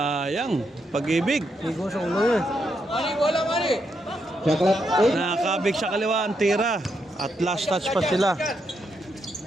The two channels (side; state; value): both; normal; correlation 0.80